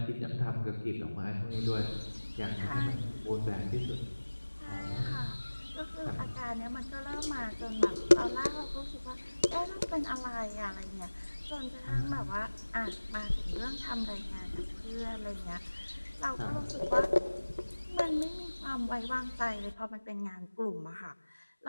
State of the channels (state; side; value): inverted; both; correlation -1.00